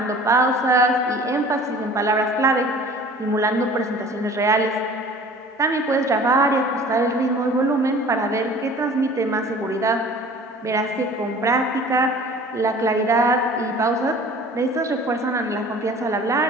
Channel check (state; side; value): normal; both; correlation 0.46